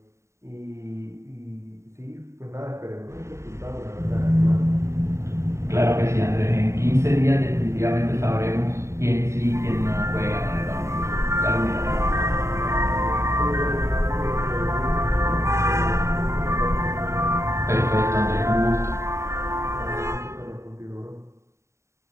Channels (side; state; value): left; late; 0.14 ms